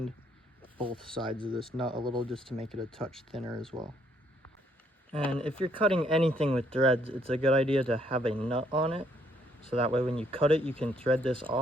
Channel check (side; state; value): both; normal; correlation 0.69